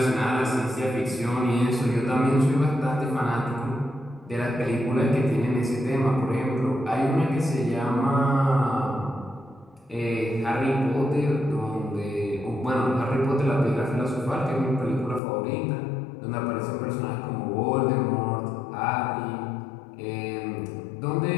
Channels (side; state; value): right; drops out; at 15.2 s